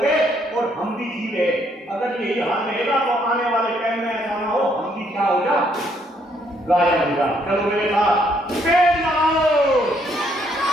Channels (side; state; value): both; normal; correlation 0.70